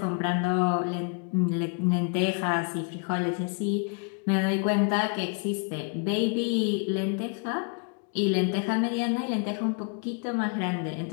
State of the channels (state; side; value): quieter; right; 37.6 dB